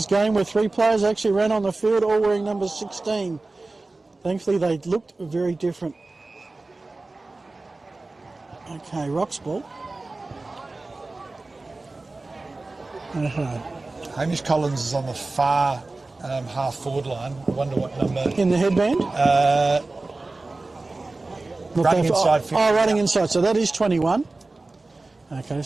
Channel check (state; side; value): quieter; left; 3.3 dB